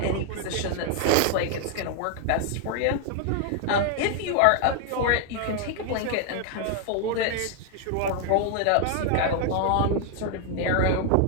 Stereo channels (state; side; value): different; both; correlation 0.00